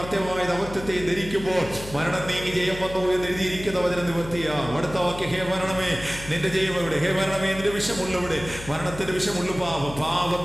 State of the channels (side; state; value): left; noise; hum, 12 dB below the sound